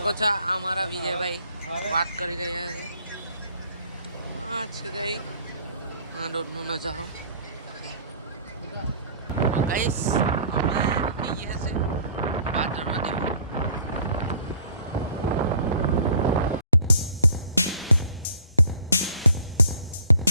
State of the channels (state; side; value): inverted; both; correlation -0.54